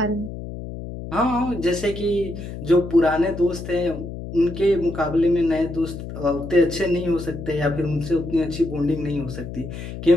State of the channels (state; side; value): noise; left; hum, 9 dB below the sound